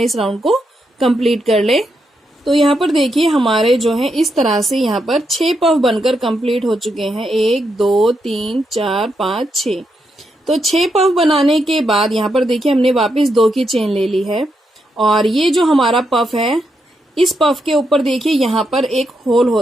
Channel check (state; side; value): normal; both; correlation 0.82